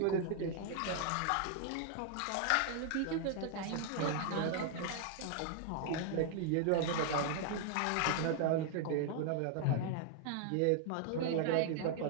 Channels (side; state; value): both; different; correlation 0.00